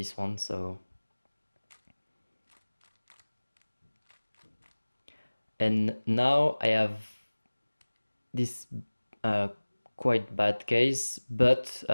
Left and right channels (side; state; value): both; inverted; correlation -1.00